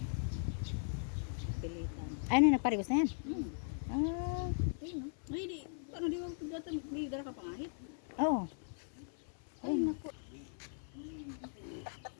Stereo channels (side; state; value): right; silent; 52 dB below the other